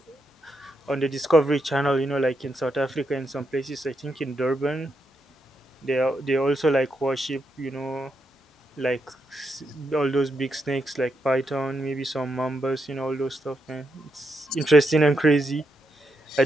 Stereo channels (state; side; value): normal; both; correlation 0.82